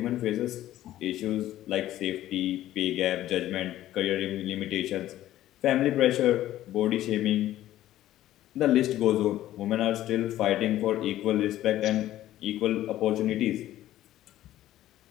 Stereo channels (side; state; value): right; quieter; 13.8 dB